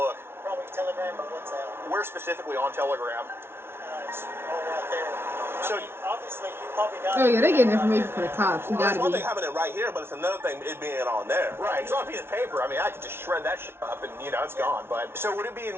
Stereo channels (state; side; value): late; left; 0.12 ms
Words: Probably Telegram or WhatsApp. Where specifically on Telegram? It's all right there. So- I mean, obviously, you probably got. Oh yeah, they getting information for the cops. You Well, gotta it's one be. thing having it right here, but it's another thing it being on there. Right, it's on a piece of paper. I mean, I could just shred that shit up and, it's gone. But so would it be